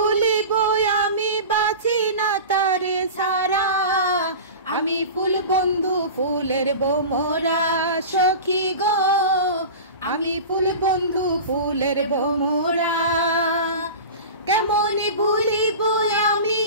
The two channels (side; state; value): both; inverted; correlation -0.32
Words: আমি, বাঁচি না তারে সারা। আমি ফুল বন্ধু ফুলের বোমরা সখী গো, আমি ফুল বন্ধু ফুলের বোমরা। কেমন ভুলিব আমি,